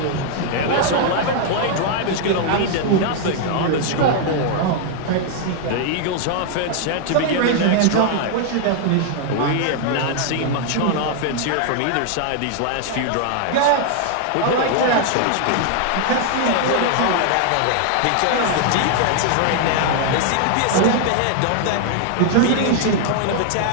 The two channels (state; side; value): different; both; correlation 0.00